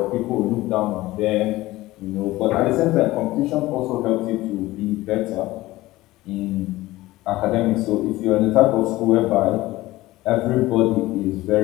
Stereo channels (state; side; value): quieter; right; 17.9 dB